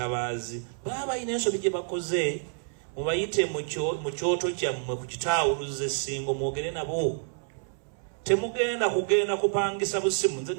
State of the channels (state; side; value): silent; left; 59 dB below the other